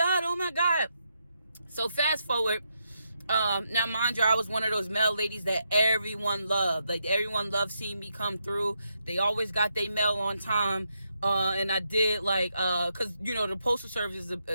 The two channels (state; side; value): inverted; both; correlation -0.82